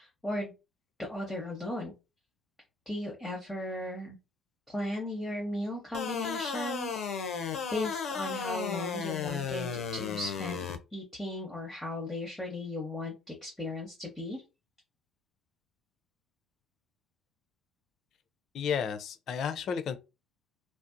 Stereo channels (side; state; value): right; quieter; 3.4 dB